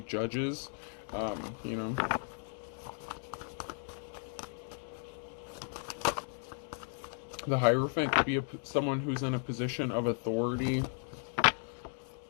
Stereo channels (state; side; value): silent; right; 54 dB below the other